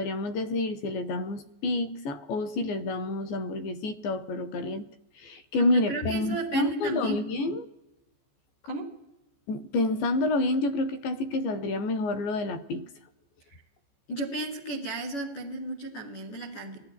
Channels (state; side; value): late; right; 14 ms